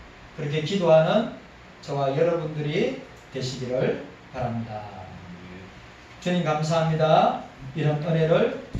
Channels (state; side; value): identical; both; correlation 1.00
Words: 그렇게 기도하는 저와 여러분들이 되시기를 바랍니다. 주님 감사합니다. 이런 은혜를